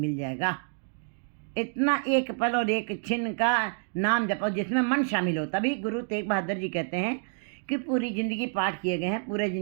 जाएगा। इतना एक पल और एक छिन्न का नाम जपो जिसमें मन शामिल हो। तभी गुरु तेग बहादुर जी कहते हैं कि पूरी ज़िंदगी पाठ किए गए हैं, पूरी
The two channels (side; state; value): left; silent; digital silence